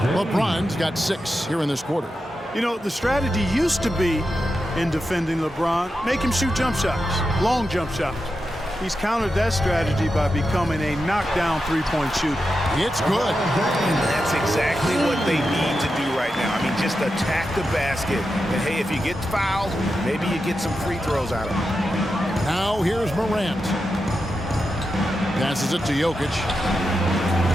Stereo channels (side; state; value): both; normal; correlation 0.89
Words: LeBron's got 6 here in this quarter. You know, the strategy used to be in defending LeBron, make him shoot jump shots, long jump shots. He's countered that strategy by becoming a knockdown three-point shooter. It's good. And that's exactly what they need to do right now. I mean, just attack the basket. And, hey, if you get fouled, maybe you get some free throws out of it. Now here's Morant. Passes it to Jokic.